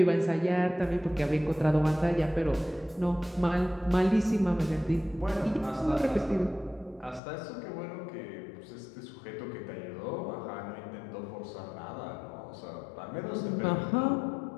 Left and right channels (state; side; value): drops out; right; at 7.2 s